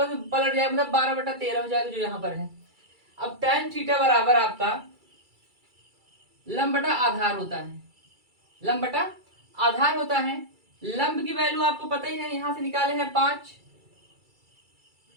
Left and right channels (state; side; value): late; left; 2.3 ms